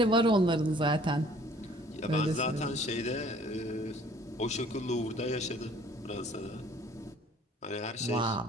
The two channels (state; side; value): normal; both; correlation 0.55